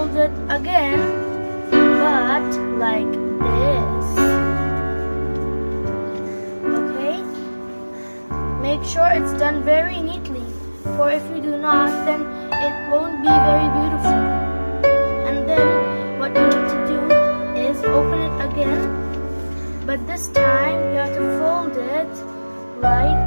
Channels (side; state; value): both; inverted; correlation -1.00